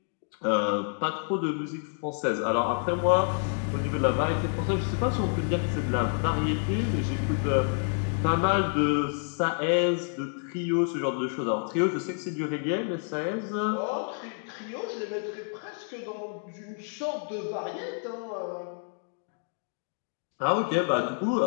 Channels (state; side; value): silent; right; 59 dB below the other